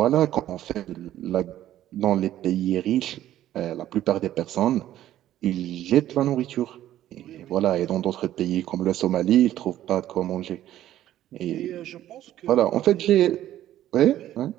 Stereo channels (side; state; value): left; quieter; 12.8 dB